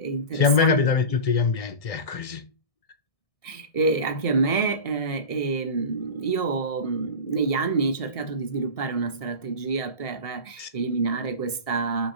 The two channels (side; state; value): right; late; 1.6 ms